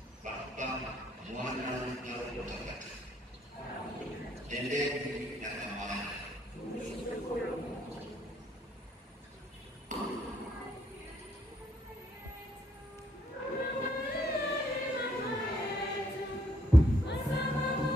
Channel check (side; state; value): both; normal; correlation 0.70